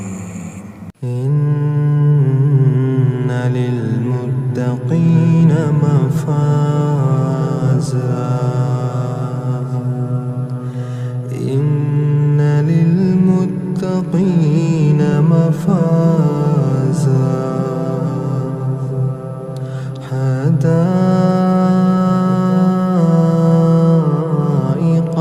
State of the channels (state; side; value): identical; both; correlation 1.00